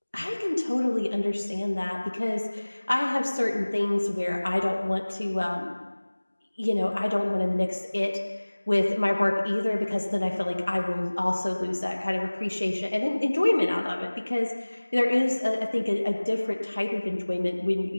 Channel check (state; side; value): inverted; both; correlation -1.00